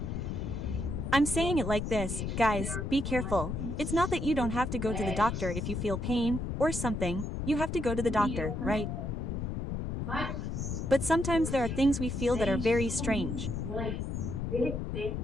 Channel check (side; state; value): left; noise; rumble, 3 dB below the sound